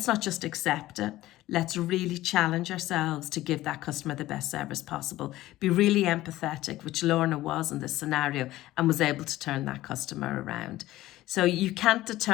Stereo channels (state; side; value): quieter; right; 16.0 dB